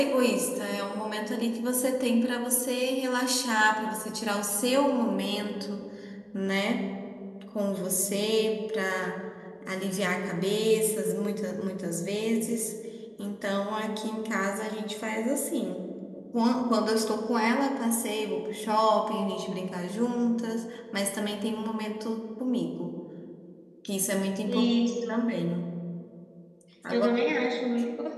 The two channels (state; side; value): identical; both; correlation 1.00